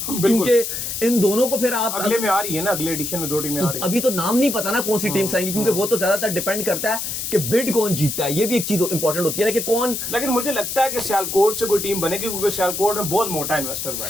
क्योंकि इन दोनों को फिर आप अगले में आ रही है ना, अगले एडिशन में 2 टीमें आ रही है। अभी तो नाम नहीं पता ना कौन सी टीम्स आएंगी, क्योंकि वो तो ज्यादातर डिपेंड करता है कि बिड कौन जीतता है। ये भी एक चीज इंपॉर्टेंट होती है ना कि कौन। लेकिन मुझे लगता है कि सियालकोट से कोई टीम बनेगी, क्योंकि सियालकोट में बहुत मोटा इन्वेस्टर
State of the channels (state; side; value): noise; left; hiss, 4 dB below the sound